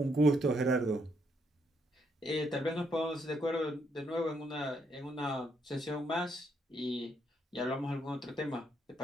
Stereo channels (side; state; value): both; normal; correlation 0.74